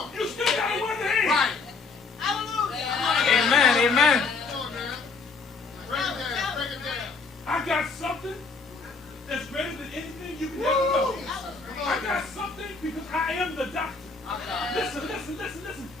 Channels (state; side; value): quieter; right; 4.4 dB